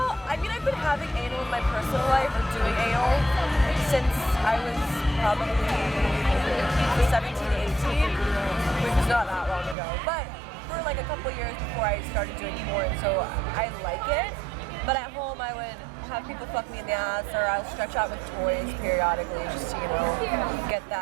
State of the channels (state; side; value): drops out; left; at 9.8 s